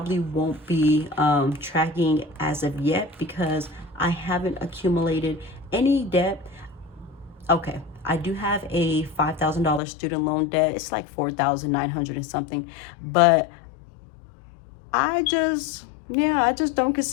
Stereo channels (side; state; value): right; drops out; at 9.8 s